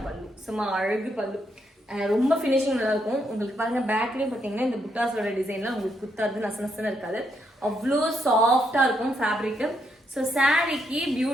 பல்லு, சும்மா அழகு பல்லு, ரொம்ப ஃபினிஷிங் நல்லா இருக்கும். உங்களுக்கு பாருங்க பேக்லேயும் பார்த்தீங்கன்னா இந்த புட்டாஸோட டிசைன்லாம் உங்களுக்கு குத்தாது, நசனசன்னு இருக்காது, அவ்வளோ சாஃப்டா இருக்கும் ஃபேப்ரிக்கு. ஸோ சாரீக்கு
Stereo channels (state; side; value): normal; both; correlation 0.77